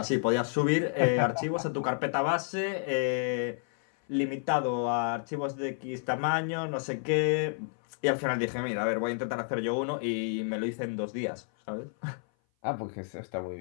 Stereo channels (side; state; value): right; silent; 56 dB below the other